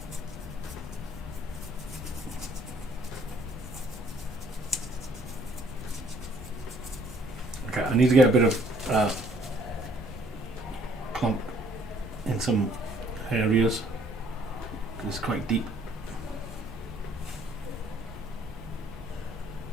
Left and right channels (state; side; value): normal; both; correlation 0.62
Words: Okay, I need to get a bit of clump in some areas because it's quite deep.